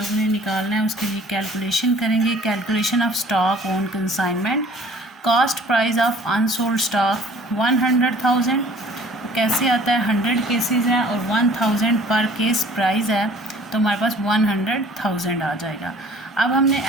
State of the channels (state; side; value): normal; both; correlation 0.52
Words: ने निकालना है, उसके लिए कैलकुलेशन करेंगे। Calculation of stock on consignment, cost price of unsold stock 100,000। कैसे आता है, 100 केसेस हैं और 1000 पर केस प्राइस है, तो हमारे पास 100,000 आ जाएगा। अब हमने